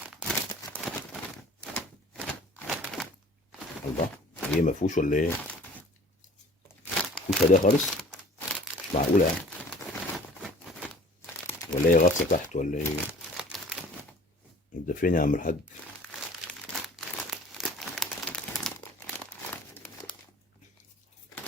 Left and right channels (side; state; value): both; normal; correlation 0.48